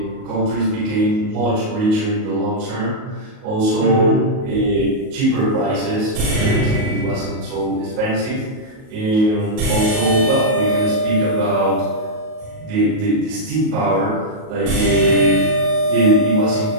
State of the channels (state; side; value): late; left; 37 ms